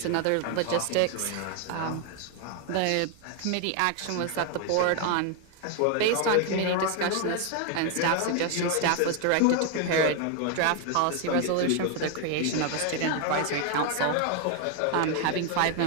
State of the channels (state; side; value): different; both; correlation 0.01